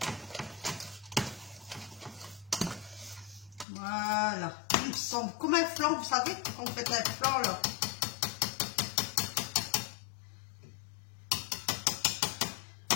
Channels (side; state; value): right; drops out; at 3.7 s